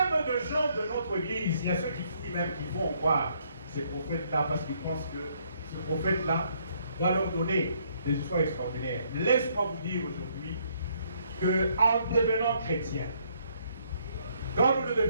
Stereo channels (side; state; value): both; inverted; correlation -0.69